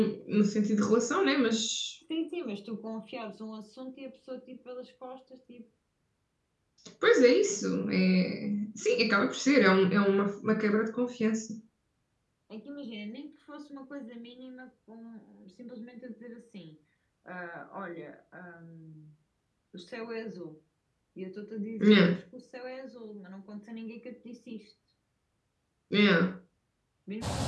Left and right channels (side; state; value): both; identical; correlation 1.00